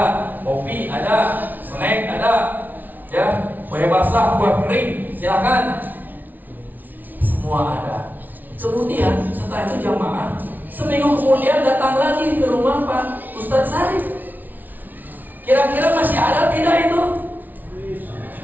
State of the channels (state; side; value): late; left; 0.082 ms